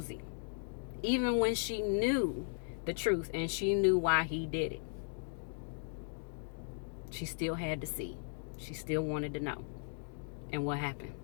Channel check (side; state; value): right; silent; digital silence